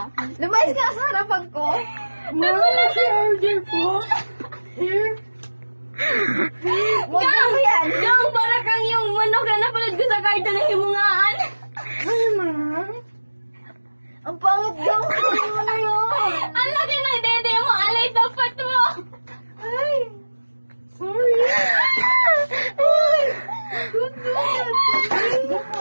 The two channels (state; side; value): inverted; both; correlation -1.00